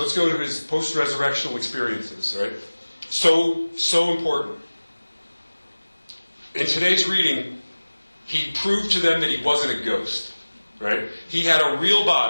go to his post-resurrectional experiences, right? So important. In today's reading, he proved to them that he wasn't a ghost, right? He had a real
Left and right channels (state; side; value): inverted; both; correlation -1.00